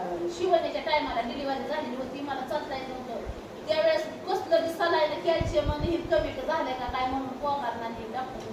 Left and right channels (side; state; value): both; identical; correlation 1.00